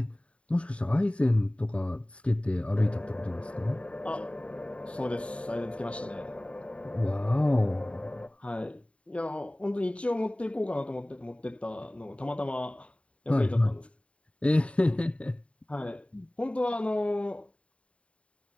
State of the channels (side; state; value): right; late; 0.062 ms